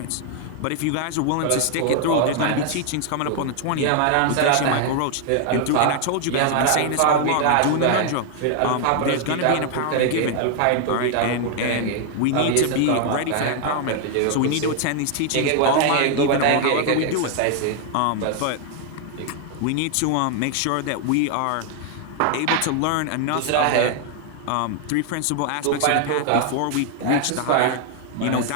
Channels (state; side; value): different; both; correlation 0.00